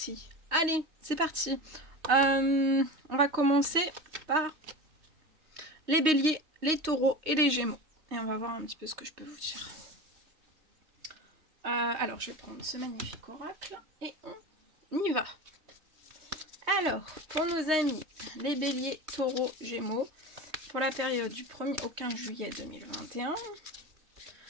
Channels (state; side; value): late; left; 3.2 ms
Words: Allez, c'est parti. On va commencer par les béliers, les taureaux et les gémeaux. Et on va voir un petit peu ce que je peux vous dire. Alors, je vais prendre ce magnifique oracle et on y va. Alors, pour nos amis, les béliers, taureaux, gémeaux, pour la période du 1er au 15 juillet 2021,